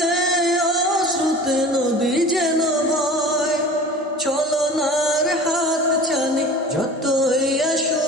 অশ্রুতে নদী যেন বয়। ছলনার হাত ছানি যতই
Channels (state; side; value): normal; both; correlation 0.39